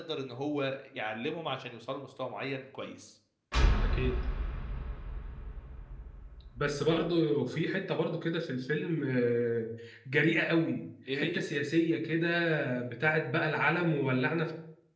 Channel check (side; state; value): both; identical; correlation 1.00